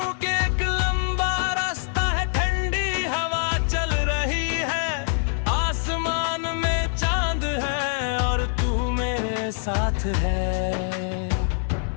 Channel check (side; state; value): right; silent; 62 dB below the other